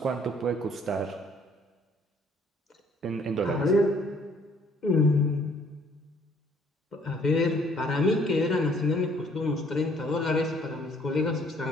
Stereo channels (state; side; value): normal; both; correlation 0.61